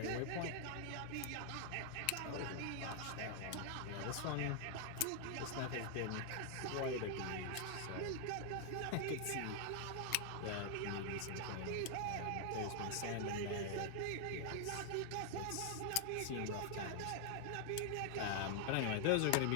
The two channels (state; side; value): different; both; correlation 0.00